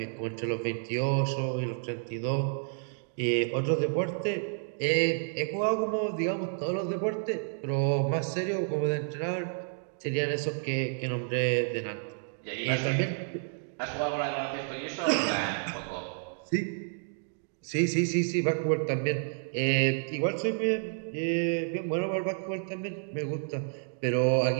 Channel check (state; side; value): silent; left; digital silence